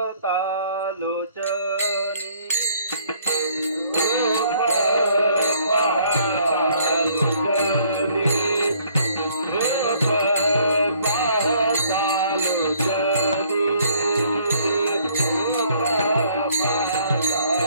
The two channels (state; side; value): inverted; both; correlation -0.62